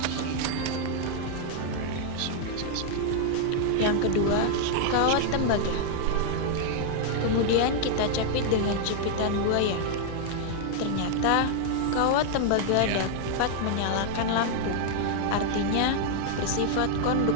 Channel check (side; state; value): both; different; correlation -0.01